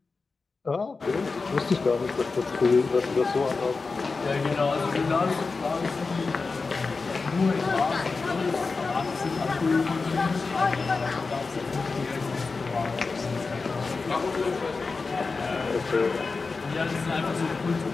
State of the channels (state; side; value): quieter; right; 4.2 dB